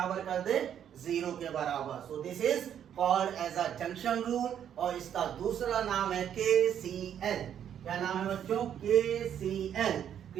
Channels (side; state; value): left; quieter; 9.4 dB